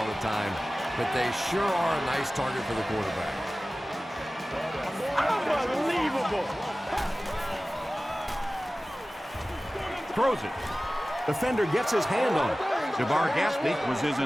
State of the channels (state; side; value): normal; both; correlation 0.97